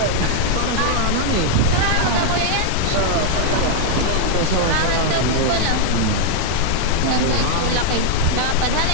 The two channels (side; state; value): both; different; correlation 0.00